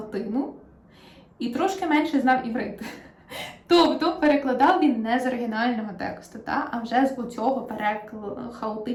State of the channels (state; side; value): identical; both; correlation 1.00